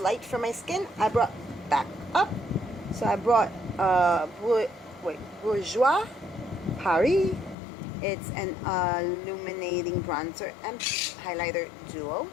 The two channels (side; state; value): right; drops out; at 7.6 s